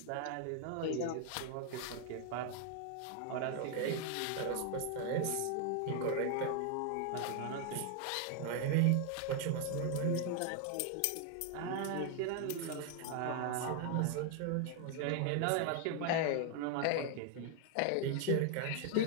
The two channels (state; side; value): different; both; correlation 0.00